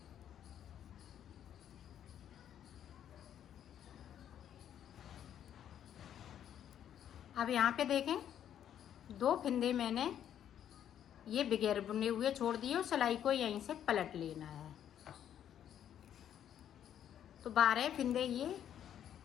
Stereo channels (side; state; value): right; quieter; 10.0 dB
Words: अब यहाँ पे देखें 2 फिंदे मैंने ये बगैर बुने हुए छोड़ दिए और सिलाई को यहीं से पलट लेना है। तो 12 फिंदे ये